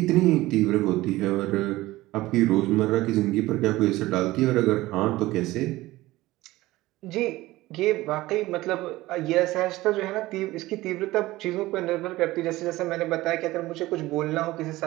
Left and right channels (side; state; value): left; quieter; 18.1 dB